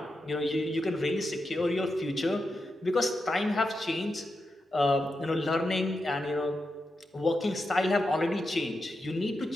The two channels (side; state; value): both; normal; correlation 0.87